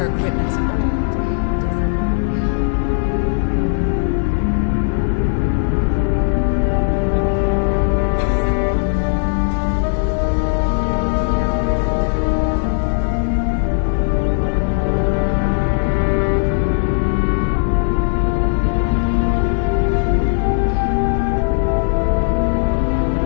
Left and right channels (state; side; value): silent; right; digital silence